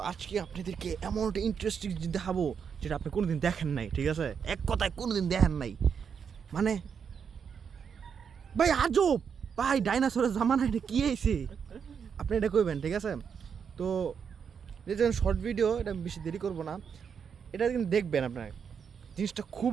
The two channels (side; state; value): left; quieter; 6.9 dB